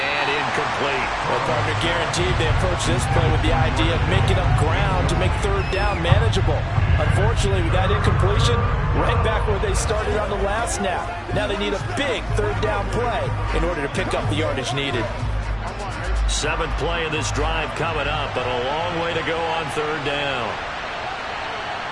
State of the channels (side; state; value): both; identical; correlation 1.00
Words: incomplete. Well, partner, guaranteed they approach this play with the idea of making up ground to make 3rd down manageable. Unfortunately, with that incompletion, right back where they started on the last snap. Now they need a big 3rd down play in order to pick up the yardage needed. 7th play of this drive coming up, but a long way to go on 3rd down.